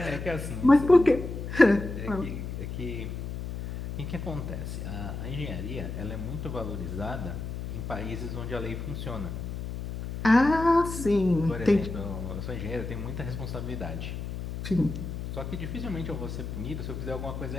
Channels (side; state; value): left; noise; hum, 6 dB below the sound